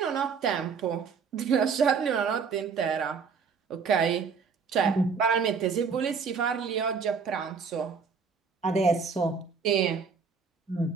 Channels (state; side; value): quieter; left; 5.6 dB